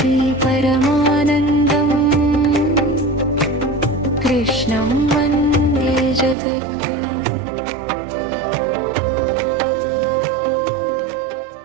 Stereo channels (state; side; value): drops out; left; at 6.4 s